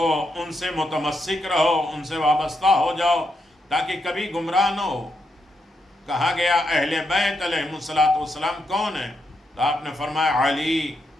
ان سے متمسک رہو، ان سے وابستہ ہو جاؤ تاکہ کبھی گمراہ نہ ہو۔ کہا گیا اہل بیت علیہم الصلوۃ والسلام کون ہیں؟ تو آپ نے فرمایا علی،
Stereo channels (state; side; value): normal; both; correlation 0.81